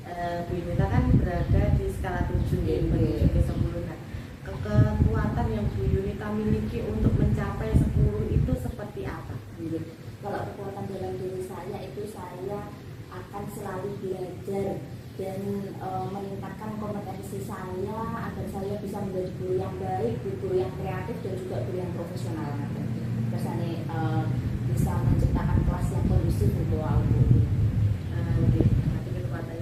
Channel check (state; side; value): identical; both; correlation 1.00